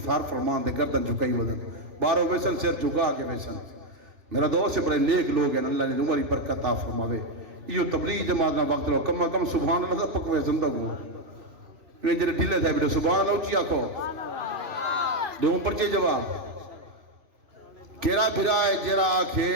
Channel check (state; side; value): late; left; 2.6 ms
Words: سار فرمان دے گردن جھکائی ودن، باروں ویسن سر جھکا کے ویسن۔ میرا دوست سے بڑے نیک لوگ ہیں، اللہ نے عمری برکت عطا فرماوے۔ یہ تبلیغ جماعت نہ وقت لو کم کم سبحان اللہ پکوے زندہ ہوں، یہ جڑے ڈھلے تھے بیٹے سبحان اللہ اچھی آکھو، دو پرچے جواب کیرا پھرا ہے جرا آکھے